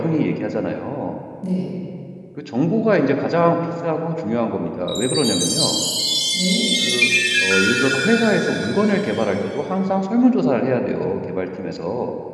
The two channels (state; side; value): identical; both; correlation 1.00